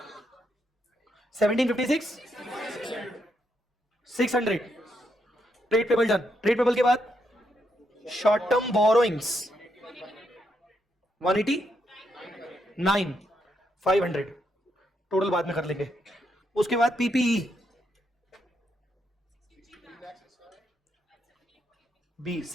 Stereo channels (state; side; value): normal; both; correlation 0.79